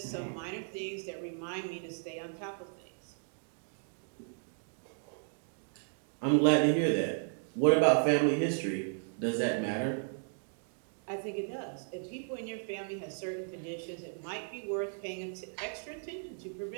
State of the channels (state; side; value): silent; left; digital silence